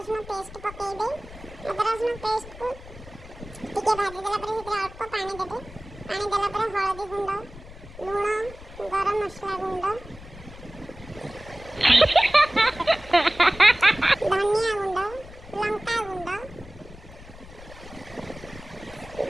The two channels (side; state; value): left; noise; rumble, 17 dB below the sound